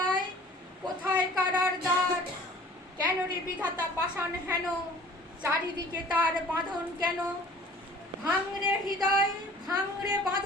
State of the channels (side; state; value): both; normal; correlation 0.49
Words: কোথায় কারার দ্বার। কেন রে বিধাতা পাষাণ হেন, চারিদিকে তার বাঁধন কেন। ভাঙরে হৃদয় ভাঙরে